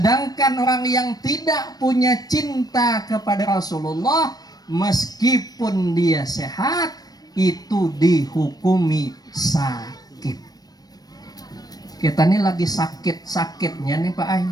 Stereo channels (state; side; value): late; right; 0.19 ms